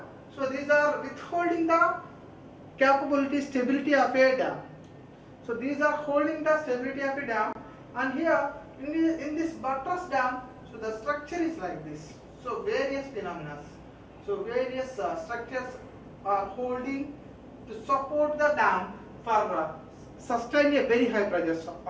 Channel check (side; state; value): both; identical; correlation 1.00